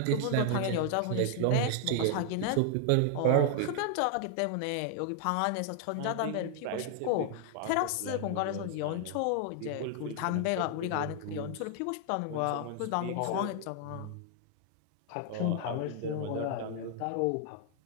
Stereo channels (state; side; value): different; both; correlation 0.00